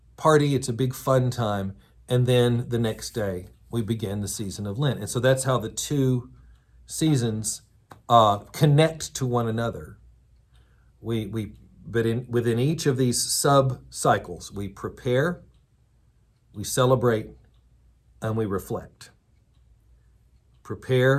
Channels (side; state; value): both; identical; correlation 1.00